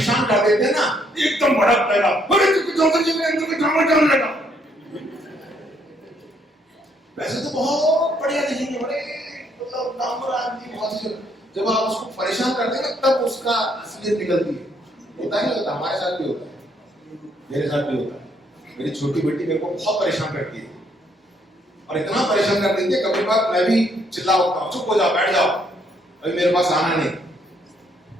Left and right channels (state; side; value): normal; both; correlation 0.70